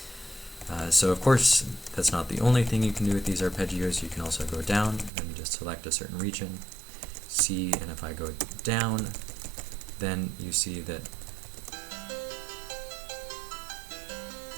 So of course that's not the only thing you can do with these arpeggios. You can also go down. Let me just select a certain region, C, and if I go down, then you see that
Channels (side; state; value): left; drops out; at 5.1 s